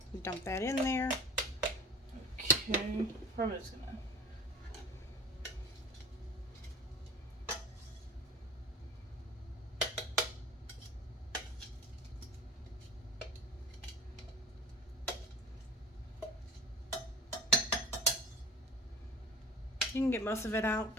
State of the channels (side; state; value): both; normal; correlation 0.39